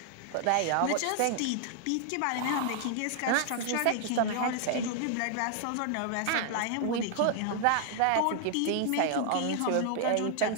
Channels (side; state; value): both; different; correlation 0.00